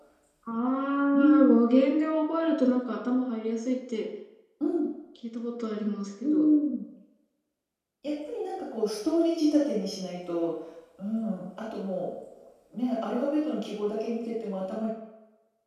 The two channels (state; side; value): identical; both; correlation 1.00